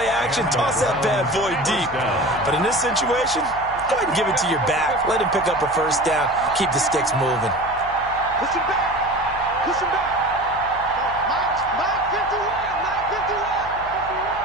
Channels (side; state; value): left; noise; hum, 17 dB below the sound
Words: action, toss that bad boy deep. But in this situation, go ahead and give it to your back. Let him pick up a first down. Keep the sticks moving. Push him back. Push him back. Mike 51. Mike 51.